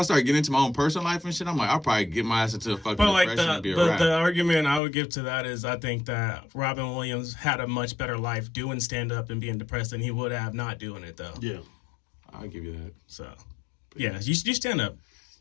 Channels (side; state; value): right; drops out; at 4.8 s